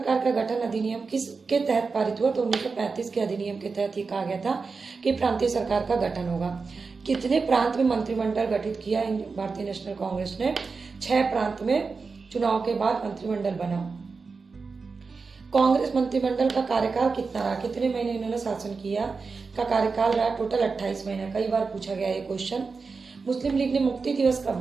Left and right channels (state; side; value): quieter; left; 4.6 dB